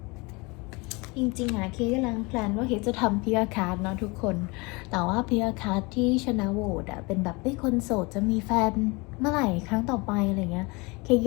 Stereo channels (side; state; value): right; quieter; 26.7 dB